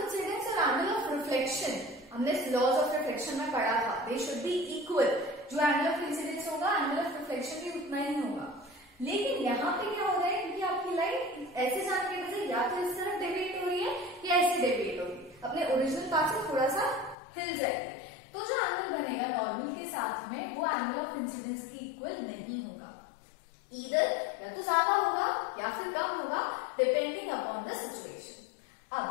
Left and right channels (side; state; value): right; drops out; at 17.2 s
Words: और एंगल ऑफ रिफ्लेक्शन हमने लॉज ऑफ रिफ्लेक्शन में पढ़ा था, दे शुड बी इक्वल। जो एंगल ऑफ इंसिडेंस होगा, एंगल ऑफ रिफ्लेक्शन भी उतना ही होगा। लेकिन यहाँ पे क्या हो रहा है, क्योंकि आपकी लाइट ऐसे जाने की वजह या तो इस तरफ डेविएट हो रही है या ऐसे डेविएट होगी, अपने ओरिजिनल पाथ से थोड़ा सा हिल जाएगी, तो जो एंगल बनेगा नॉर्मल के साथ में वो एंगल ऑफ इंसिडेंस की इक्वल नहीं होगा। ईदर या तो ज्यादा होगा या फिर कम होगा, डिपेंडिंग अपॉन द सिचुएशन।